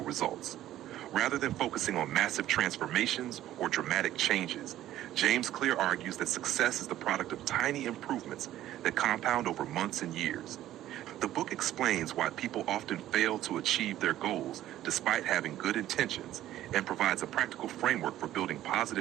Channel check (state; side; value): quieter; left; 13.3 dB